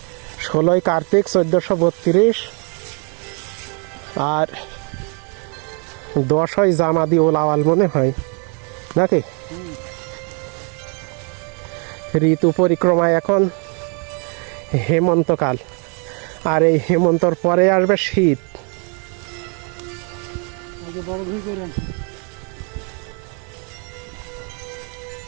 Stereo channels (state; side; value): quieter; left; 37.1 dB